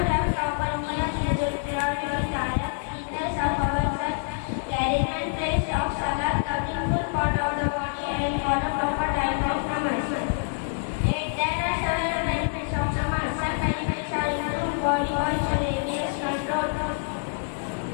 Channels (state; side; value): silent; right; digital silence